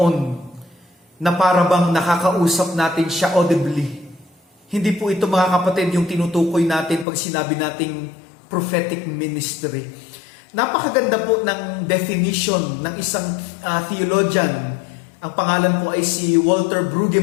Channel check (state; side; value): drops out; right; at 7.1 s